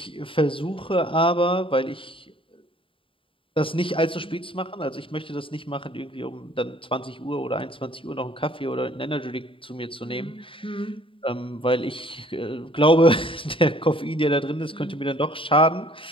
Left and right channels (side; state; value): right; late; 0.25 ms